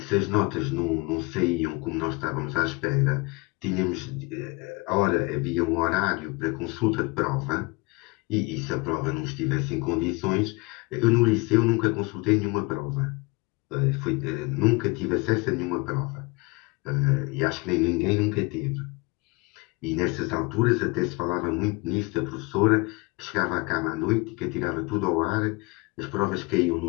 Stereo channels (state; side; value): quieter; right; 25.8 dB